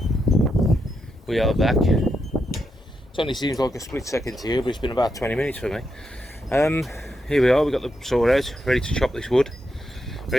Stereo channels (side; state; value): both; normal; correlation 0.83